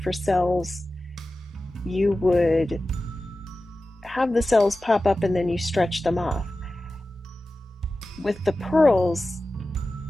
cells, you would have the cells pop up and then you stretch them off. With the pearls,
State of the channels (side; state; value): both; normal; correlation 0.95